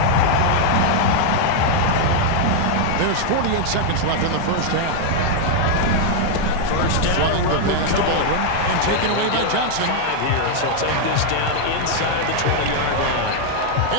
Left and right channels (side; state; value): both; different; correlation 0.00